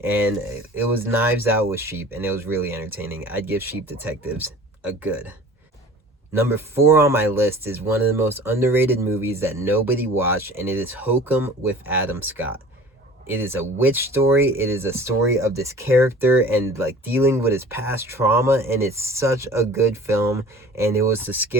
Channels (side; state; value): both; normal; correlation 0.44